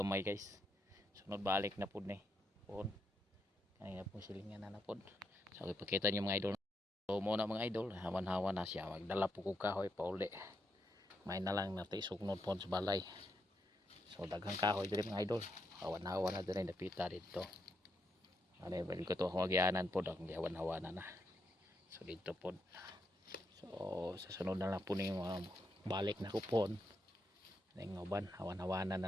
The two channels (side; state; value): both; normal; correlation 0.80